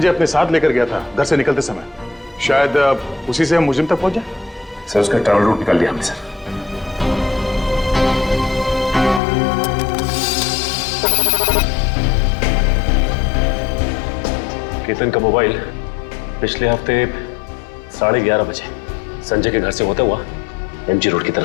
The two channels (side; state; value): right; drops out; at 9.2 s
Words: अपने साथ लेकर गया था घर से निकलते समय, शायद उसी से हम मुजिम तक पहुंच जाए। सर उसका ट्रैवल रूट निकाल लिया हमने सर। केतन का मोबाइल पिछले हफ्ते 11:30 बजे संजय के घर से होता हुआ एमजी रोड की